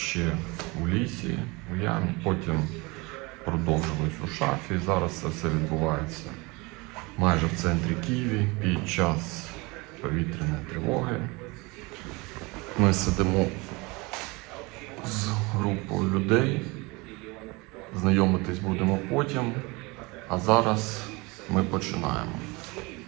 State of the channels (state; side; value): quieter; left; 25.5 dB